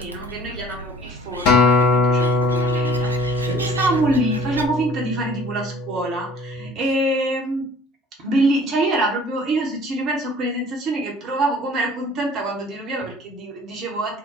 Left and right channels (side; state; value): both; normal; correlation 0.50